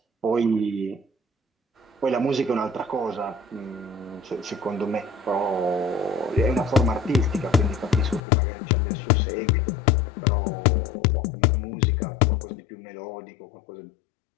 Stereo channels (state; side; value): drops out; right; at 8.2 s